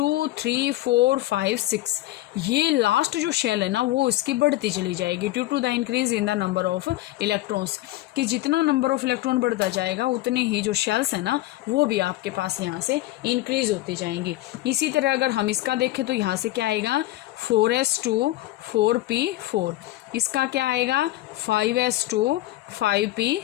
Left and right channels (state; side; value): quieter; right; 16.6 dB